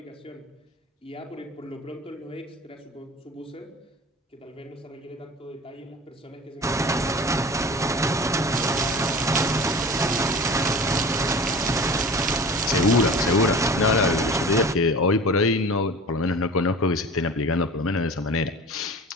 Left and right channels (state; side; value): normal; both; correlation 0.38